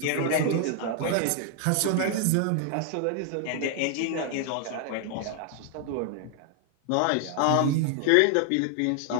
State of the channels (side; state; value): both; different; correlation 0.00